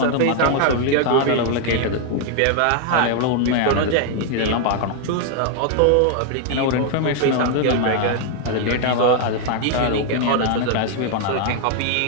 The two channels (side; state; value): both; different; correlation 0.00